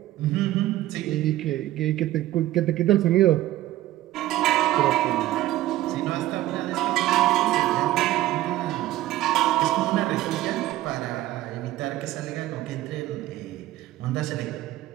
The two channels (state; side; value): quieter; left; 15.2 dB